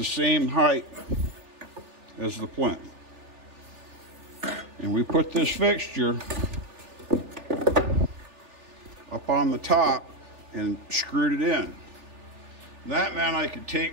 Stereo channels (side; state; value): left; late; 3.4 ms